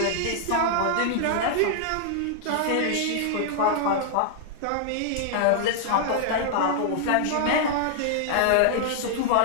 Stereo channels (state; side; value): different; both; correlation -0.01